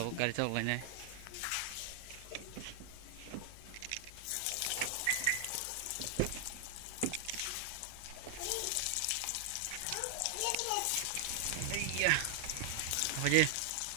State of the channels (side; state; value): both; different; correlation 0.00